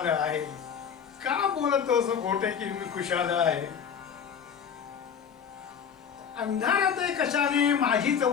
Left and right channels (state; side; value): quieter; right; 7.4 dB